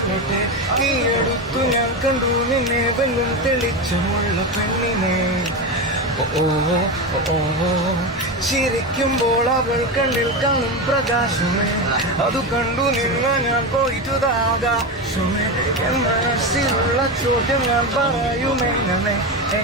ഈ അടുത്തു ഞാൻ കണ്ടു നിന്നെ വെല്ലും തെളിച്ചമുള്ള പെണ്ണിനെ ഓ ഓ ചിരിക്കുമ്പോൾ അവൾ കണ്ണിൽ കാണും പ്രകാശമേ അത് കണ്ടു നിന്ന ഞാൻ പോയിട്ടുതാകാശമേ എൻ മനസ്സിലുള്ള ചോദ്യം ഞാൻ പറയുമെങ്ങനെ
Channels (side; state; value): both; normal; correlation 0.17